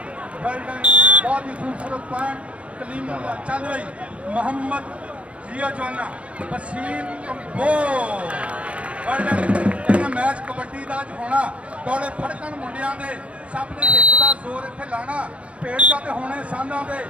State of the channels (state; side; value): late; left; 0.062 ms